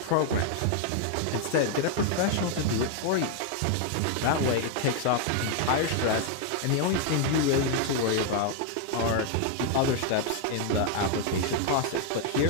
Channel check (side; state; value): both; different; correlation 0.00